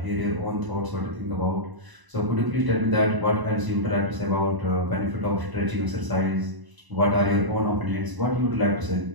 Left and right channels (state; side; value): late; left; 1.0 ms